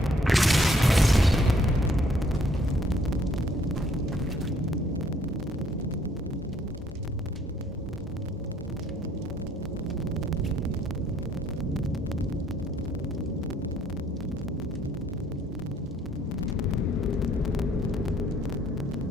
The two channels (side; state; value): both; normal; correlation 0.64